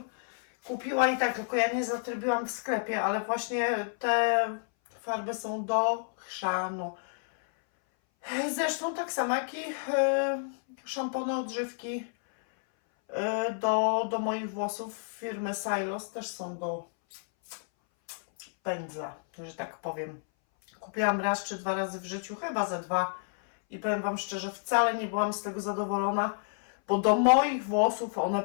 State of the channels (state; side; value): silent; right; 58 dB below the other